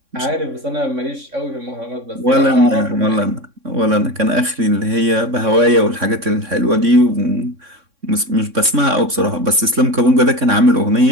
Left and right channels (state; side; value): late; left; 3.6 ms